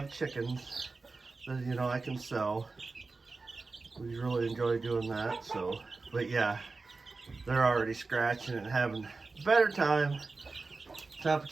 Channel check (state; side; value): quieter; left; 3.9 dB